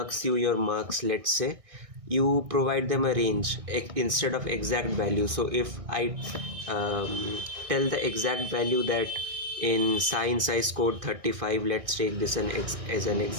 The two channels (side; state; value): left; late; 1.6 ms